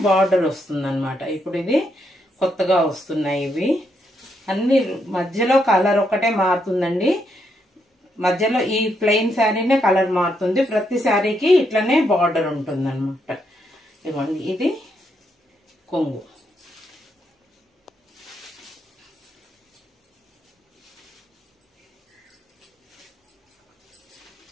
బార్డర్ వస్తుంది అన్నమాట. ఇప్పుడు ఇది కొత్తగా వస్తున్నాయి. ఇవి అన్ని మధ్యలో కలర్ ఒకటే మారుతుందండి. మధ్యలో ఈ ప్లెయిన్ శారీనే కలర్ మారుతుంది. ప్రతి శారీకి ఇట్లనే బార్డర్ ఉంటుంది అనమాట. ఇవ్వండి, ఇది కొంగు.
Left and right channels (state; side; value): normal; both; correlation 0.78